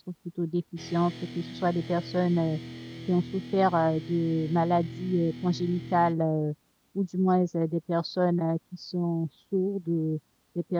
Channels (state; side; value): identical; both; correlation 1.00